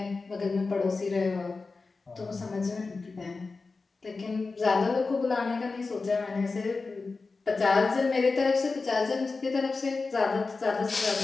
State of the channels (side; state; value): right; quieter; 4.0 dB